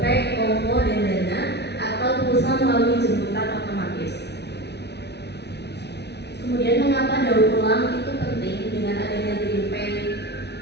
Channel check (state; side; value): late; right; 0.49 ms